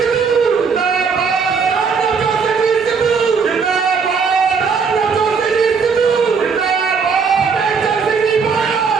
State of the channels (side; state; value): left; quieter; 5.5 dB